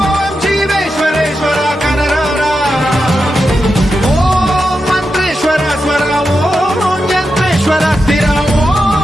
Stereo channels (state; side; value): normal; both; correlation 0.88